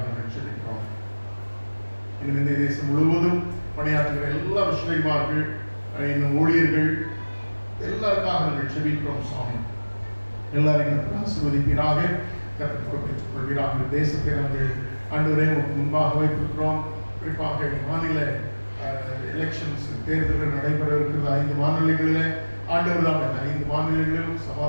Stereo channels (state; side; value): inverted; both; correlation -1.00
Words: நாங்கள் செபிக்கிறோம். இன்னும் இந்த தேசம் முழுவதும் பணியாற்றுகிற எல்லா மிஷனரிமார்கள், இன்னும் ஊழியர்கள் எல்லாருக்காக நாங்கள் செபிக்கிறோம். சுவாமி, எல்லாரையும் கர்த்தர் ஆசீர்வதிப்பீராக. கர்த்தர் பொறுப்பேற்றுக் கொள்வீராக. இந்த தேசத்தை நாங்கள் ஆண்டவரே முன்பாக வைத்திருக்கிறோம். குறிப்பாக மாநில எலெக்ஷன்ஸ் தேர்தல்கள் நடைபெற இருக்கிறது 5 மாநிலங்களில். ஆண்டவர் தான் 5 மாநிலங்களிலும்